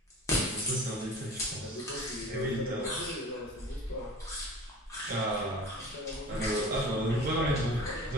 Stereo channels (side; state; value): both; normal; correlation 0.40